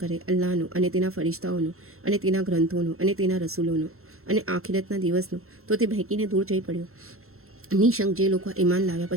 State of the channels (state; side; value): late; left; 0.62 ms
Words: અલ્લાહનો અને તેના ફરિશ્તાઓનો અને તેના ગ્રંથોનો અને તેના રસૂલોનો અને આખિરતના દિવસનો તો તે બહેકીને દૂર જઈ પડ્યો. નિશંક જે લોકો ઈમાન લાવ્યા